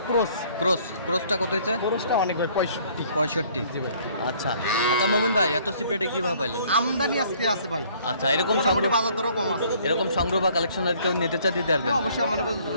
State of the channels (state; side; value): inverted; both; correlation -0.59